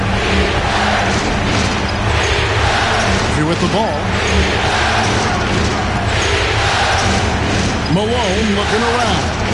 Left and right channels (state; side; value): identical; both; correlation 1.00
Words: Here with the ball. Malone looking around.